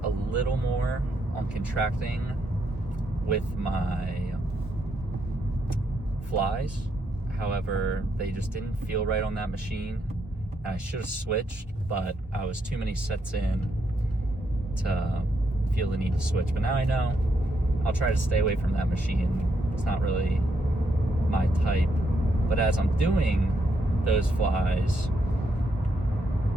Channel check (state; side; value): normal; both; correlation 0.78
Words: a little more on contracting with my flies. However, they just didn't feel right on that machine. And I should have switched, but I was too many sets in to feel the need to switch. But now I know I'll try to stay away from that machine. It's not really my type. But as I'm doing those flies,